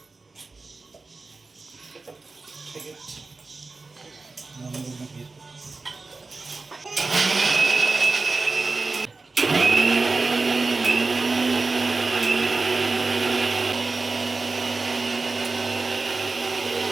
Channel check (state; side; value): quieter; left; 3.8 dB